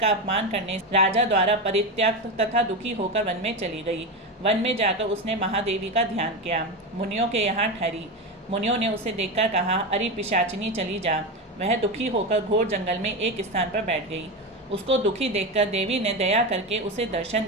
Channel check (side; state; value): both; normal; correlation 0.17